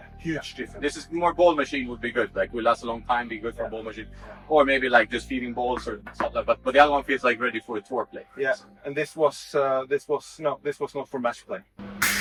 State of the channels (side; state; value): both; identical; correlation 1.00